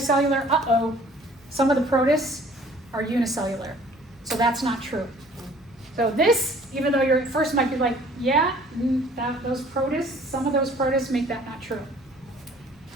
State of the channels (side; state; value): both; normal; correlation 0.54